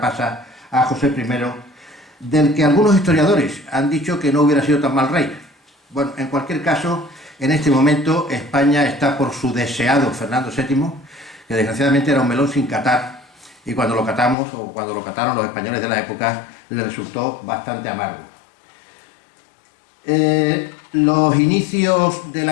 pasa a José I, del que algunos historiadores han dicho que no hubiera sido tan mal rey. Bueno, en cualquier caso, en este momento España está por su deseado Fernando VII, que desgraciadamente era un melón sin catar, y cuando lo catamos, o cuando lo cataron los españoles de la época, le resultó bastante amargo. Los inicios de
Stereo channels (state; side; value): drops out; right; at 14.4 s